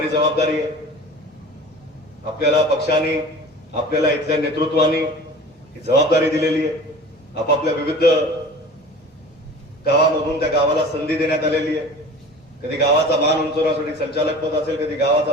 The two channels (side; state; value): both; normal; correlation 0.40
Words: जबाबदारी आहे. आपल्याला पक्षाने, आपल्याला इथल्या नेतृत्वाने ही जबाबदारी दिलेली आहे. आपापल्या विविध गावामधून त्या गावाला संधी देण्यात आलेली आहे. कधी गावाचा मान उंचवण्यासाठी संचालक पद असेल, कधी